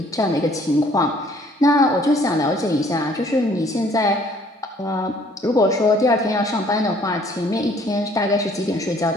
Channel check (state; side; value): normal; both; correlation 0.59